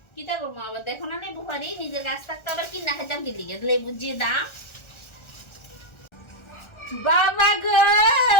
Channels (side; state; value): right; late; 1.3 ms